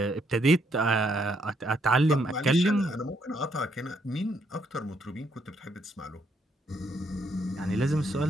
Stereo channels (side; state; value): both; normal; correlation 0.73